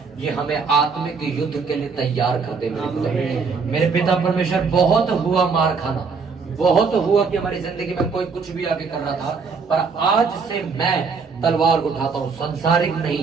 ये हमें आत्मिक युद्ध के लिए तैयार करते मेरे खुदा। मेरे पिता परमेश्वर बहुत हुआ मार खाना, बहुत हुआ कि हमारी जिंदगी में कोई कुछ भी आगे कर रहा था, पर आज से मैं तलवार उठाता हूँ, संसारिक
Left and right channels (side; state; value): left; quieter; 5.1 dB